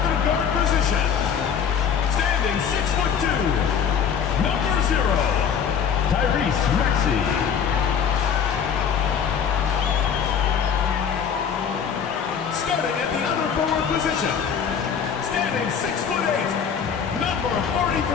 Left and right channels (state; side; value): quieter; right; 7.4 dB